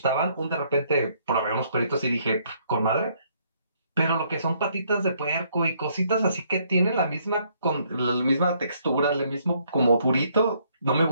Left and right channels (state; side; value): inverted; both; correlation -0.68